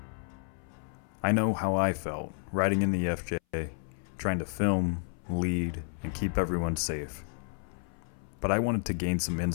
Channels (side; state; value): right; silent; 57 dB below the other